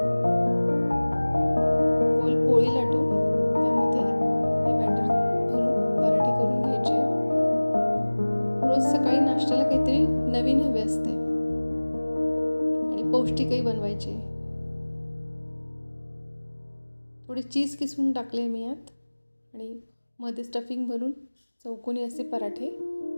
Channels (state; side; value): inverted; both; correlation -1.00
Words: गोल पोळी लाटून त्यामध्ये हे बॅटर भरून पराठे करून घ्यायचे. रोज सकाळी नाश्त्याला काहीतरी नवीन हवे असते आणि पौष्टिकही बनवायचे. थोडे चीज किसून टाकले मी यात आणि मध्ये स्टफिंग भरून चौकोनी असे पराठे